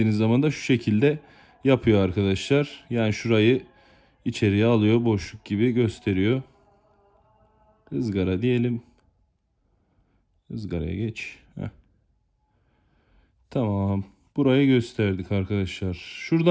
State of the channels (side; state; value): both; identical; correlation 1.00